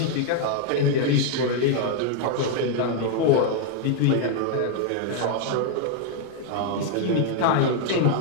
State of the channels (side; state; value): both; different; correlation 0.00